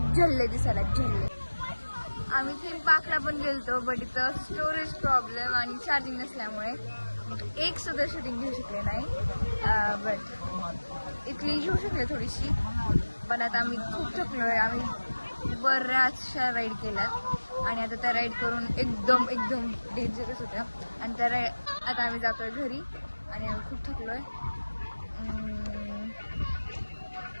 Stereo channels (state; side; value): inverted; both; correlation -1.00